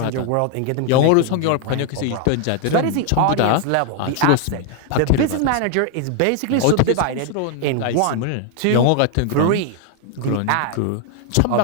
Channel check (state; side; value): different; both; correlation 0.00